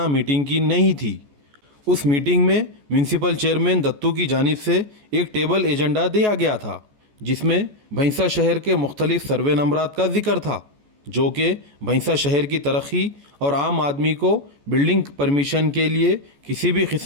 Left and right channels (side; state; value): left; late; 14 ms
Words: मीटिंग की नहीं थी। उस मीटिंग में म्यूनसिपल चेयरमैन दत्तू की जानिब से एक टेबल एजेंडा दिया गया था जिसमें भैंसा शहर के मुख्तलिफ सर्वे नंबरात का जिक्र था, जो कि भैंसा शहर की तरक्की और आम आदमी को बिल्डिंग परमिशन के लिए किसी भी